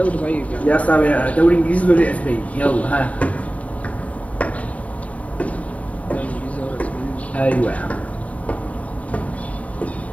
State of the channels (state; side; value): late; right; 0.066 ms